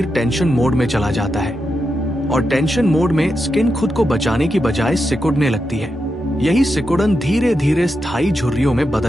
टेंशन मोड में चला जाता है और टेंशन मोड में स्किन खुद को बचाने की बजाय सिकुड़ने लगती है। यही सिकुड़न धीरे धीरे स्थायी झुर्रियों में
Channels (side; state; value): both; normal; correlation 0.86